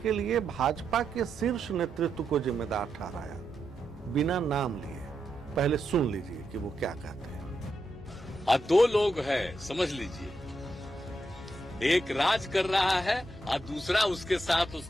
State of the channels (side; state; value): both; normal; correlation 0.84